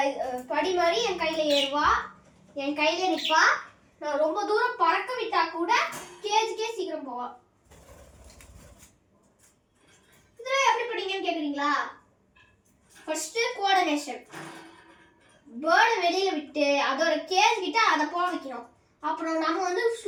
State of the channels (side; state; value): both; identical; correlation 1.00